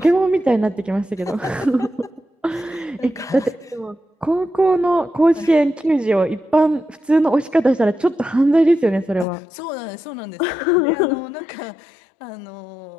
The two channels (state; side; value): drops out; right; at 9.2 s